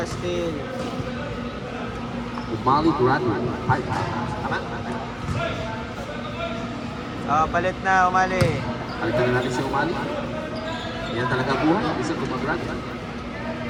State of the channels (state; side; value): identical; both; correlation 1.00